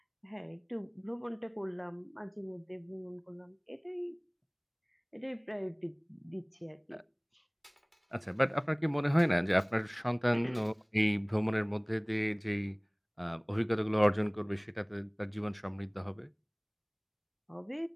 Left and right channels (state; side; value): identical; both; correlation 1.00